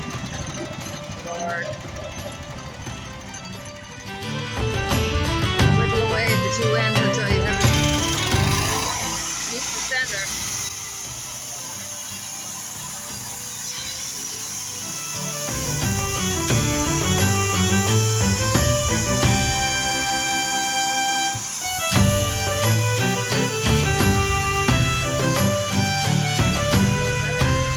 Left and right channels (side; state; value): both; identical; correlation 1.00